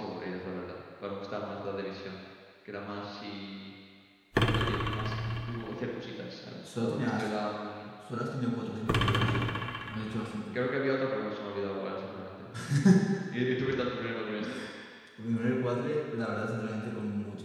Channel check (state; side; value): identical; both; correlation 1.00